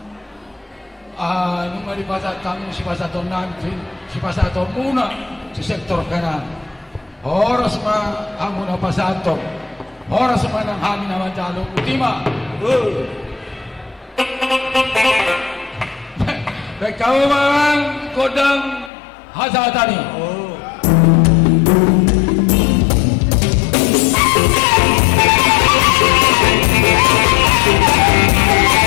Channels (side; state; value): right; drops out; at 18.9 s